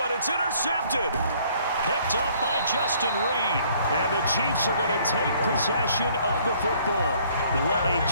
and it's intercepted. Picked up by Justin Reed. And the Chiefs are going to take possession of the football. What a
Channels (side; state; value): both; inverted; correlation -0.61